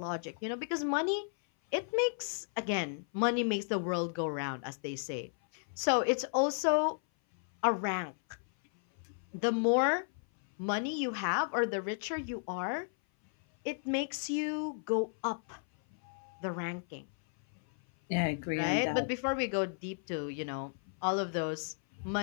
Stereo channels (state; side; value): silent; right; 55 dB below the other